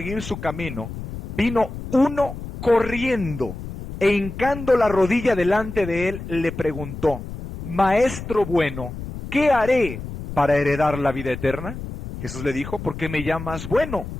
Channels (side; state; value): left; noise; rumble, 10 dB below the sound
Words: su camino, vino uno corriendo e hincando la rodilla delante de él, le preguntó, Maestro bueno, ¿qué haré para heredar la vida eterna? Jesús le dijo, ¿por qué me llamas bueno?